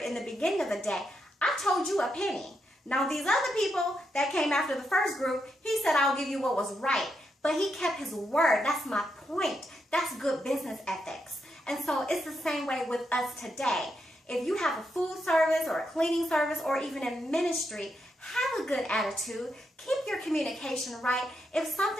in the beginning of the day, I told you a penny. Now, these other people that came after the first group, he said, I'll give you what was right. But he kept his word. That's my point. That's good business ethics. And so it's the same way with us today. If you have a food service or a cleaning service or even in ministry, have a good attitude. Keep your communication right. If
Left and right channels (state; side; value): normal; both; correlation 0.82